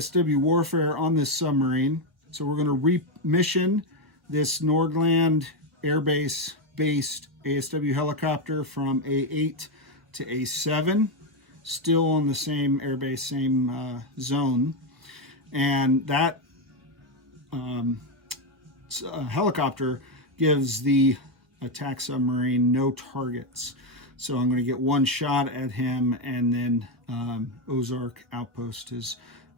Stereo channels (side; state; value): left; late; 1.4 ms